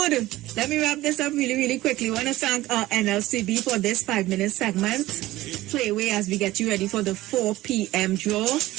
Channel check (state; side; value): quieter; left; 16.9 dB